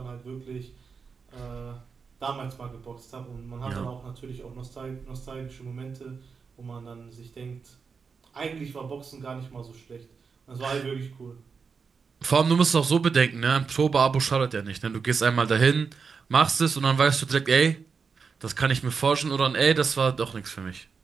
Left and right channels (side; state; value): left; quieter; 5.5 dB